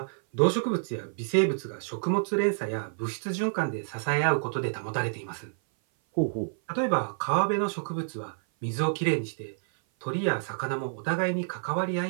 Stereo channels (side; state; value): left; silent; 56 dB below the other